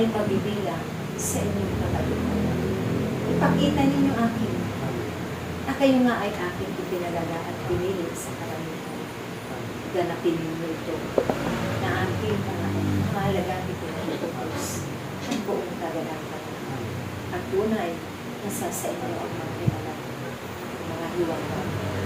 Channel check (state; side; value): identical; both; correlation 1.00